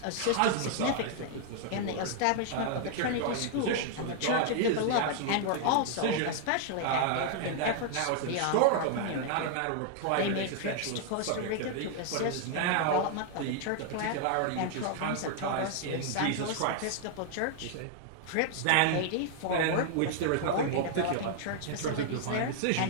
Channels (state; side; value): different; both; correlation 0.00